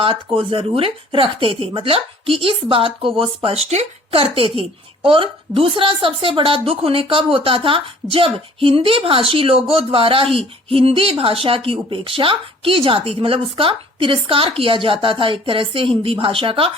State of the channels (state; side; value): normal; both; correlation 0.53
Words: को जरूर रखते थे, मतलब कि इस बात को वो स्पष्ट करते थे। और दूसरा सबसे बड़ा दुख उन्हें कब होता था, जब हिंदी भाषी लोगों द्वारा ही हिंदी भाषा की उपेक्षा की जाती थी, मतलब उसका तिरस्कार किया जाता था एक तरह से हिंदी भाषा का,